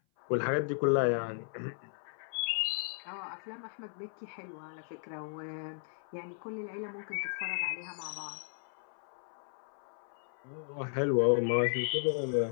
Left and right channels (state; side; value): silent; right; 54 dB below the other